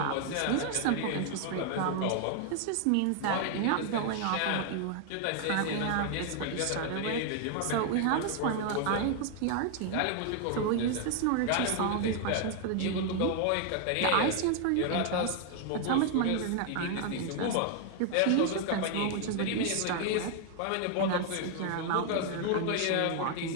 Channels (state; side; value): different; both; correlation 0.00